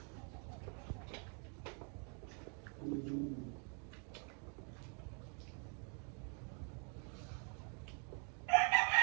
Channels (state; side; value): quieter; left; 39.5 dB